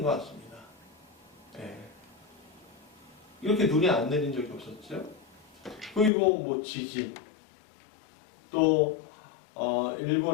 것 같습니다. 네. 이렇게 눈이 안 내린 적이 없었죠. 그리고 뭐 지진, 또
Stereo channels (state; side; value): drops out; right; at 6.1 s